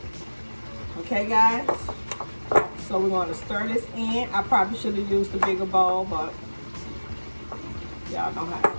Okay, guys. So we're going to stir this in. I probably should have used a bigger bowl, but y'all know how it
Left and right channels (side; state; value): both; inverted; correlation -1.00